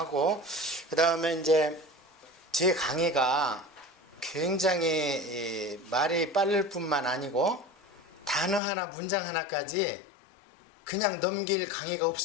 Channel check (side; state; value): right; drops out; at 8.6 s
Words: 그 다음에 이제 제 강의가 굉장히 말이 빠를 뿐만 아니고 단어 하나 문장 하나까지 그냥 넘길 강의가